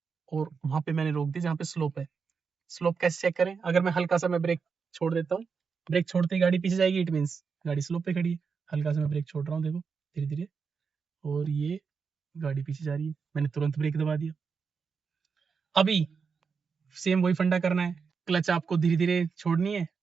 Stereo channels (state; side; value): quieter; left; 5.6 dB